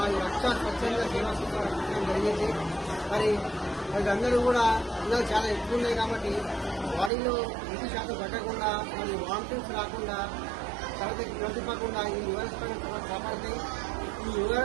రక్ష స్వచ్ఛంద సేవా సంస్థ రక్షించడం జరిగింది. మరి అందరూ కూడా ఎండలు చాలా ఎక్కువ ఉన్నాయి కాబట్టి బాడీలో 20% పట్టకుండా మరి వామిటింగ్స్ రాకుండా తరగతి ప్రతిపకుండా ఈ ఓఆర్ఎస్ ప్యాకెట్ కాపాడుతాయి. ఈ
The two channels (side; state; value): left; drops out; at 7.1 s